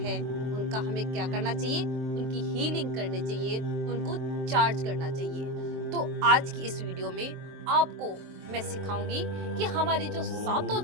उनका हमें क्या करना चाहिए, उनकी हीलिंग करनी चाहिए, उनको चार्ज करना चाहिए। तो आज की इस वीडियो में आपको मैं सिखाऊंगी कि हमारे जो सातों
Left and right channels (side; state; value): left; late; 23 ms